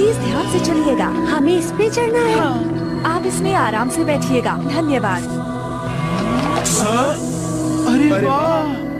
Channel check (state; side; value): identical; both; correlation 1.00